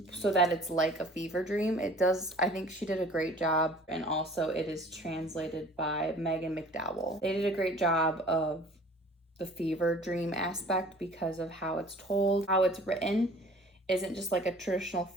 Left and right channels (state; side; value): normal; both; correlation 0.49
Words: so that it's like a fever dream. It does, I think she did a great job, and also it is translated by Megan McDowell. They did a great job of the fever dream aspect because of how it's told. How it's written isn't just like a traditional